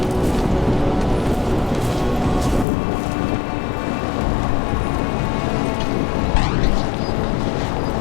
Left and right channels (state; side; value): drops out; right; at 2.7 s